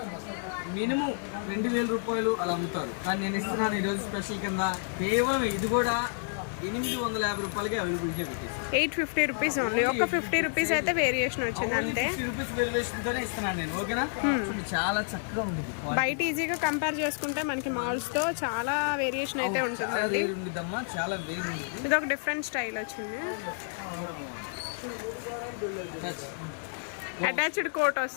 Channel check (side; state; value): right; silent; digital silence